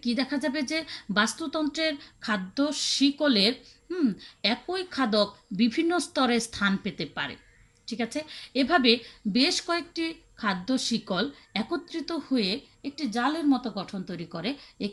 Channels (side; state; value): both; identical; correlation 1.00